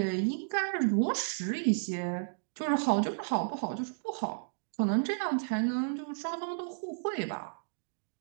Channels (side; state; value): left; silent; digital silence